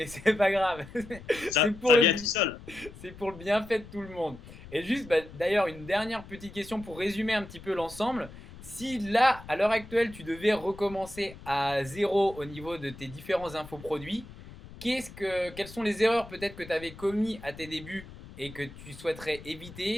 c'est pas grave. Ça pour vient tout seul. C'est pour le bienfait de tout le monde. Et juste, d'ailleurs, une dernière petite question pour résumer un petit peu l'ensemble. Si là, à l'heure actuelle, tu devais recommencer à zéro au niveau de tes différents infoproduits, quelles sont les erreurs peut-être que tu avais commis à tes débuts et que tu souhaiterais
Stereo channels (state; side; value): noise; left; rumble, 17 dB below the sound